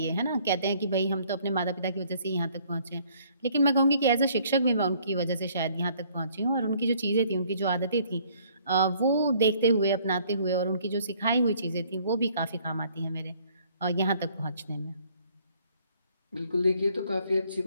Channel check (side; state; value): both; inverted; correlation -0.60